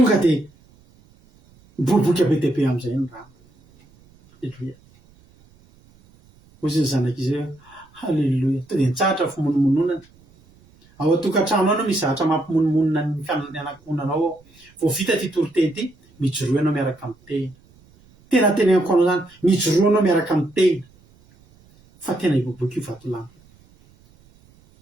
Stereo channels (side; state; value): right; noise; rumble, 30 dB below the sound